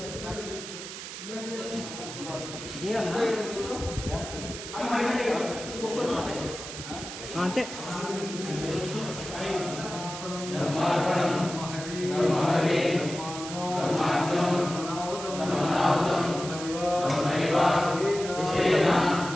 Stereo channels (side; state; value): right; noise; hiss, 9 dB below the sound